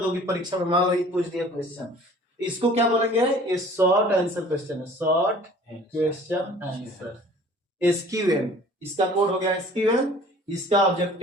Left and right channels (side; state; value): both; normal; correlation 0.49